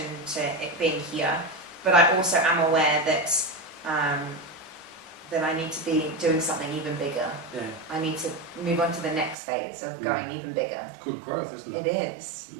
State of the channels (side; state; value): left; drops out; at 9.3 s